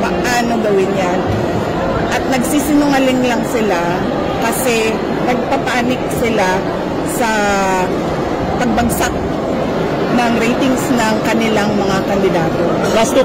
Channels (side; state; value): both; identical; correlation 1.00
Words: paano gawin yan. At nagsisinungaling lang sila kasi nagpapanik sila sa pagbagsak ng ratings ng kanilang mga kandidato. Last two